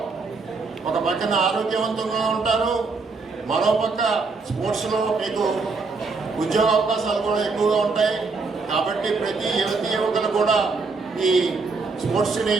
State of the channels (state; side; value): quieter; left; 4.3 dB